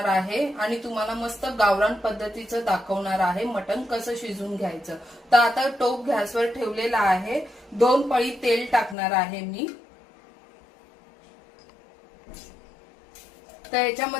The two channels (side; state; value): right; drops out; at 9.0 s